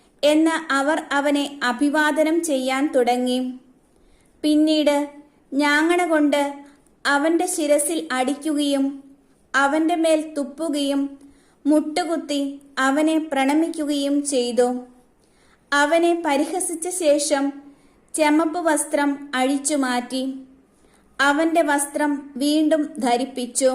എന്ന് അവർ അവനെ അഭിവാദനം ചെയ്യാൻ തുടങ്ങി. പിന്നീട് ഞാങ്ങണ കൊണ്ട് അവന്റെ ശിരസിൽ അടിക്കുകയും അവന്റെ മേൽ തുപ്പുകയും മുട്ടുകുത്തി അവനെ പ്രണമിക്കുകയും ചെയ്തു. അവനെ പരിഹസിച്ച ശേഷം ചെമപ്പ് വസ്ത്രം അഴിച്ചുമാറ്റി അവന്റെ വസ്ത്രം വീണ്ടും ധരിപ്പിച്ചു.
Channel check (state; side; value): identical; both; correlation 1.00